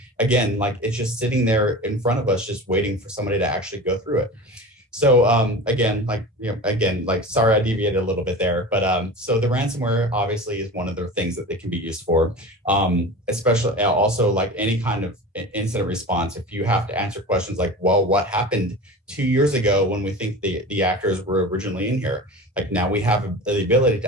again, like it's just sitting there in front of us just waiting for somebody to actually go through it. So again, sorry I deviated a little bit there, but so the ransomware obviously is one of the things that they can be used for, especially also like any kind of incident response. If you have to answer questions like, well, what happened 2 years ago when we think the actors were originally in here? Like now we have the ability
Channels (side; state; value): both; normal; correlation 0.32